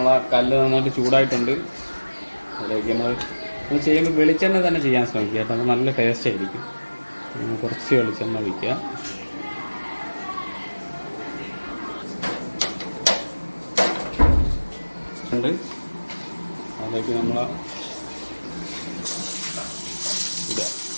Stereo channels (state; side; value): inverted; both; correlation -1.00